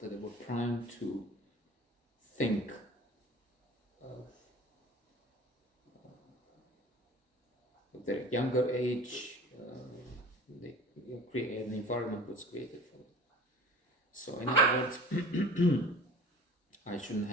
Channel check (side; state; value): both; normal; correlation 0.42